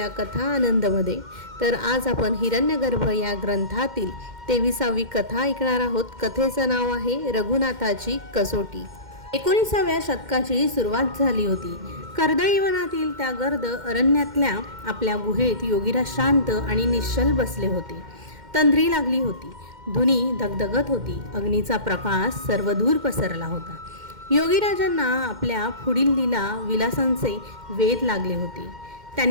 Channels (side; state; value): left; late; 2.1 ms